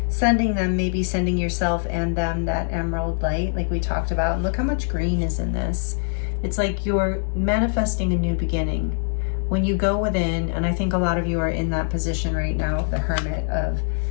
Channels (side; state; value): right; silent; 63 dB below the other